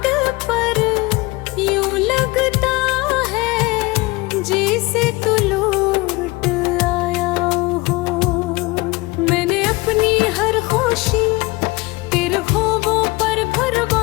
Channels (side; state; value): right; quieter; 23.1 dB